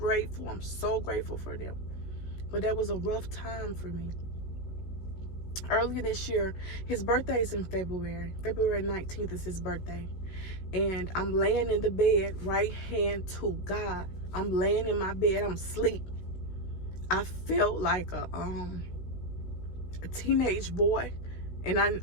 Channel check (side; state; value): right; late; 16 ms